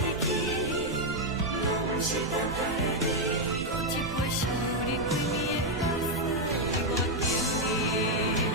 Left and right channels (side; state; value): right; noise; rumble, 12 dB below the sound